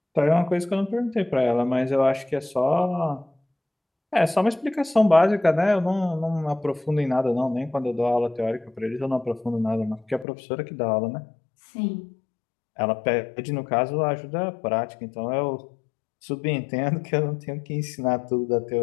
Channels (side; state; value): right; drops out; at 10.2 s